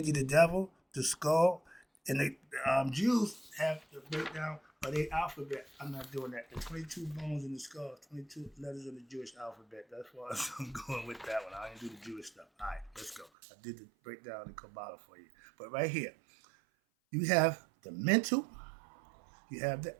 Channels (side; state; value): left; drops out; at 13.3 s